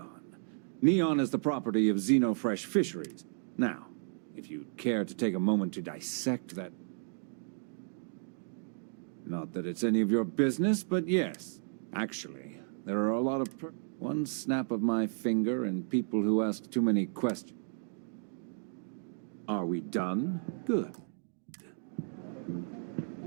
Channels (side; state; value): left; silent; digital silence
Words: Neon is the property of Xenofresh Fisheries. Now, if you'd care to take a moment to dissect that... Not that it's any of your business, but yes. Actually, there are a lot of one snap of my finger and people who ask too many questions. Are we done? Good.